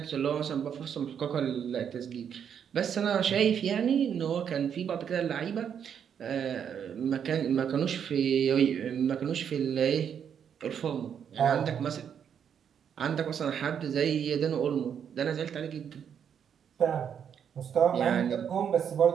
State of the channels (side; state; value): left; quieter; 8.1 dB